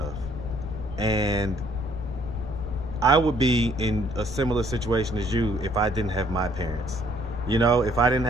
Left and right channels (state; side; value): noise; left; rumble, 10 dB below the sound